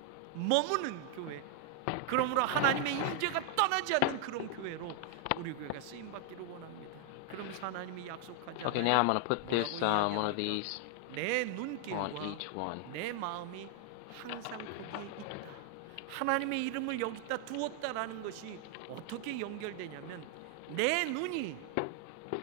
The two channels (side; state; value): both; different; correlation 0.00